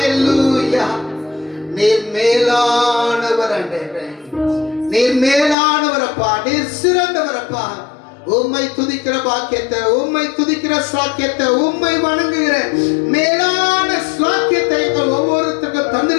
நீர் மேலானவர் ஆண்டவரே, நீர் மேலானவரப்பா, நீர் சிறந்தவரப்பா. உம்மை துதிக்கிற பாக்கியத்தை, உம்மை துதிக்கிற ஸ்லாக்கியத்தை, உம்மை வணங்குகிற மேலான ஸ்லாக்கியத்தை எங்கள் ஒவ்வொருத்தருக்கும்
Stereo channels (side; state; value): right; drops out; at 5.6 s